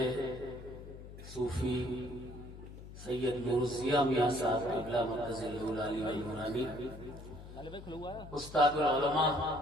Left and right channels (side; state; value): left; noise; hum, 14 dB below the sound